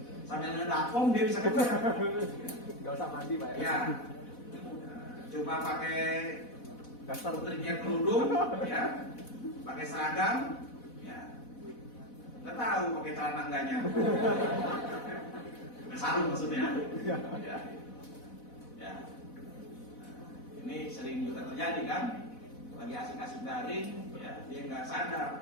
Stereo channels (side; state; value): right; late; 4.1 ms